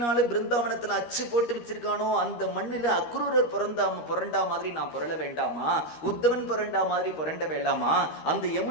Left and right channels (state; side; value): late; right; 13 ms